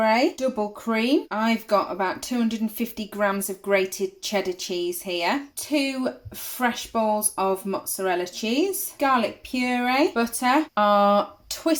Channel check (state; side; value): identical; both; correlation 1.00